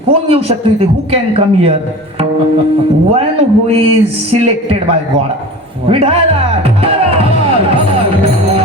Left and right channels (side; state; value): both; normal; correlation 0.36